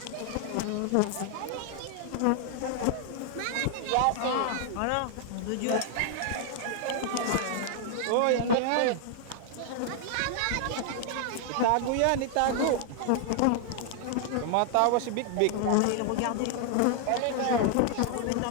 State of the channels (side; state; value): both; different; correlation 0.00